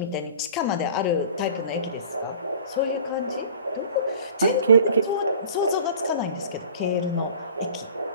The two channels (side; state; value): both; inverted; correlation -0.44